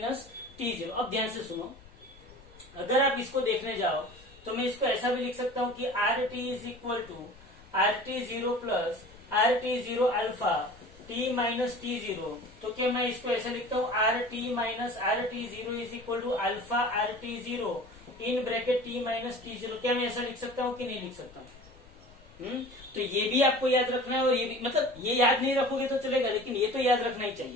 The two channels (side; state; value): left; noise; rumble, 24 dB below the sound